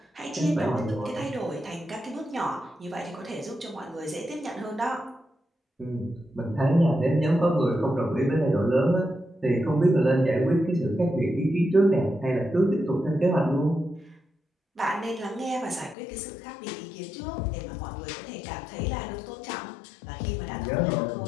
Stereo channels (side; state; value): right; drops out; at 16.0 s